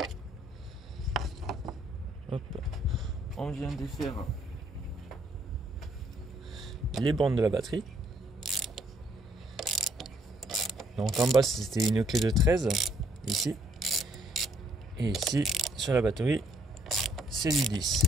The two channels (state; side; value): normal; both; correlation 0.67